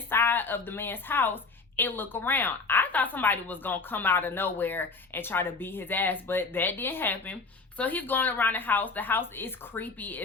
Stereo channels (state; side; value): quieter; right; 4.2 dB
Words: of the man's house and look around. I thought somebody was gonna come out of nowhere and try to beat his ass, but that didn't happen. So he's going around the house. The house is creepy